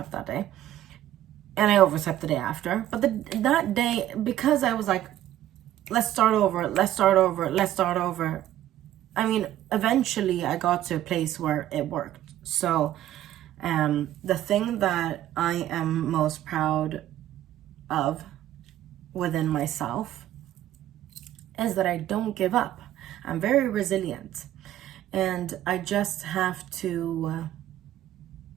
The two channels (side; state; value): left; quieter; 12.8 dB